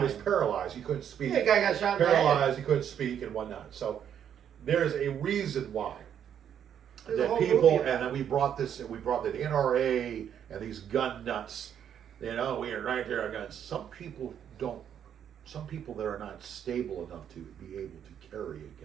was time. paralyzed. He couldn't speak. Yeah, the guy got shot in the head. Paralyzed. He couldn't speak and whatnot. So there's a reason why. There's a That whole people, movie and about then we brought the NRA and these gun nuts. We are right there on guns. Some people that are not stable enough to be able to carry a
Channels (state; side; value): quieter; left; 9.1 dB